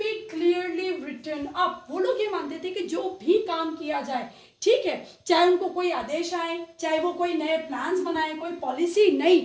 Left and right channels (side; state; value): both; identical; correlation 1.00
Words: clearly written up. वो लोग ये मानते थे कि जो भी काम किया जाए, ठीक है, चाहे उनको कोई आदेश आए, चाहे वो कोई नए प्लान्स बनाए, कोई पॉलिसी